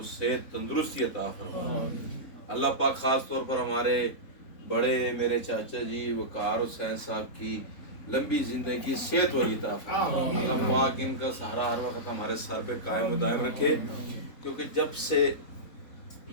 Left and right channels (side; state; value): right; late; 4.0 ms